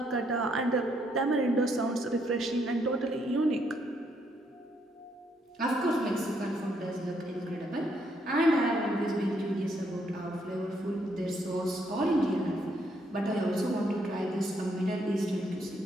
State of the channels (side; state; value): both; normal; correlation 0.73